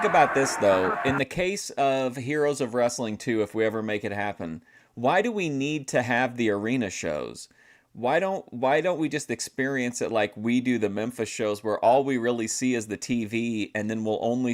about this, though? In the case of Heroes of Wrestling 2, if we ever make it happen, why do we need to have the arena shows? Why don't we just experience it like we do the Memphis shows, where all we really see is the TV, and then we'll only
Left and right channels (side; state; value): both; identical; correlation 1.00